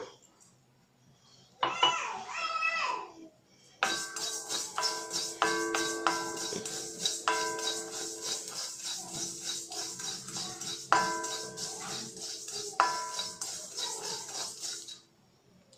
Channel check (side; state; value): both; identical; correlation 1.00